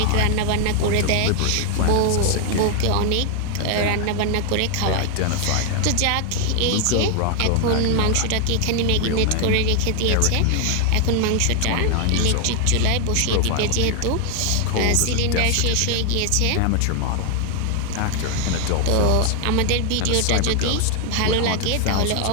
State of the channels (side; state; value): both; different; correlation 0.00